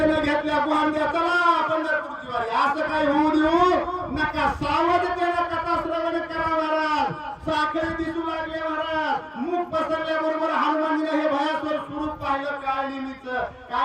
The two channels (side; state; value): both; identical; correlation 1.00